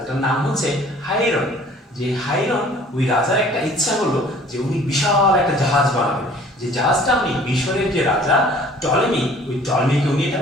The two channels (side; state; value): both; normal; correlation 0.52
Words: নাম হচ্ছে হাইরন। যে হাইরন, ওই রাজার একটা ইচ্ছা হলো যে উনি বিশাল একটা জাহাজ বানাবেন, যে জাহাজটা উনি মিশরের যে রাজা টলেমি, ওই টলেমিকে উনি এটা